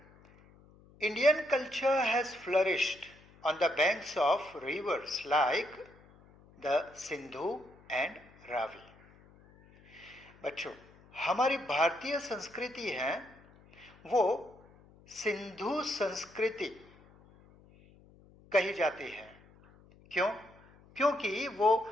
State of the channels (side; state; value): left; noise; hum, 26 dB below the sound